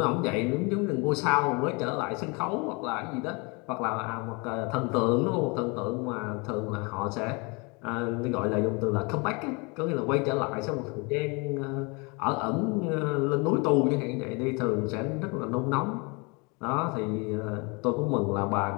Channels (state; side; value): quieter; right; 29.8 dB